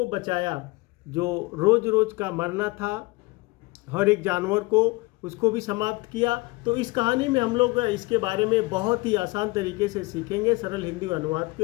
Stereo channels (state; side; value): quieter; right; 23.9 dB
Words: बचाया। जो रोज रोज का मरना था हर एक जानवर को, उसको भी समाप्त किया। तो इस कहानी में हम लोग इसके बारे में बहुत ही आसान तरीके से सीखेंगे, सरल हिंदी अनुवाद